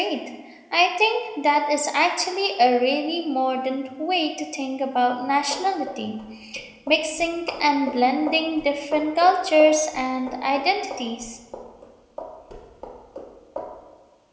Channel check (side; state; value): both; identical; correlation 1.00